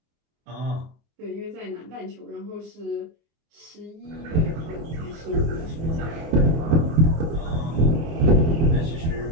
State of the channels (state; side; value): late; left; 24 ms